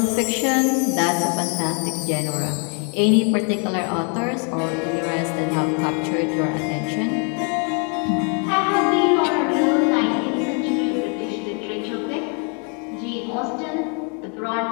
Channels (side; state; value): right; quieter; 38.3 dB